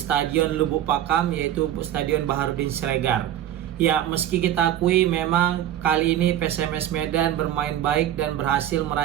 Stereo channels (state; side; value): quieter; left; 11.6 dB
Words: Lubuk Pakam, yaitu Stadion Baharudin Siregar. Ya, meski kita akui memang kali ini PSMS Medan bermain baik dan berhasil